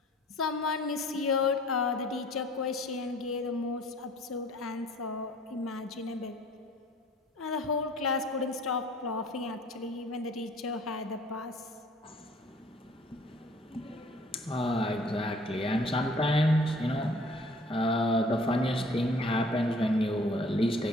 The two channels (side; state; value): both; normal; correlation 0.54